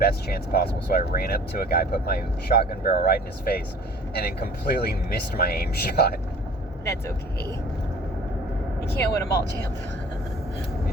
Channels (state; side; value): normal; both; correlation 0.48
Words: chance possible, so I ran up to a guy, put my shotgun barrel right in his face, and then completely missed my aim shot. That's okay. You can't win them all, champ.